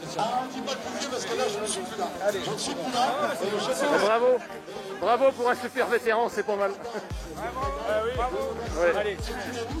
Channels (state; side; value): identical; both; correlation 1.00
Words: Ah, on ne dit pas le plus vieux parce que là, je ne suis plus là. Allez, je ne suis plus là. Bravo. Bravo pour un super vétéran, c'est pas mal. Ouais. Allez,